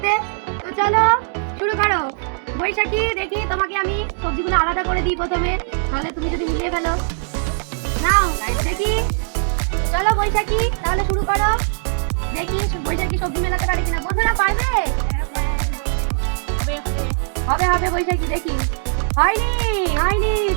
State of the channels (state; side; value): silent; left; digital silence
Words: তো চলো শুরু করো। বৈশাখী, দেখি তোমাকে আমি সবজিগুলো আলাদা করে দিই প্রথমে, তাহলে তুমি যদি মিলিয়ে ফেলো। নাও দেখি, চলো বৈশাখী তাহলে শুরু করো। দেখি বৈশাখী সবজি মেলাতে পারে কিনা। বন্ধুরা পারবে? হবে হবে বৈশাখী, দেখি। হয়নি হয়নি,